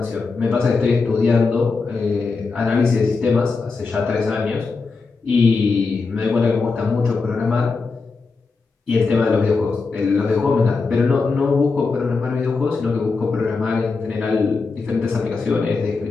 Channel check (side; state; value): right; quieter; 4.4 dB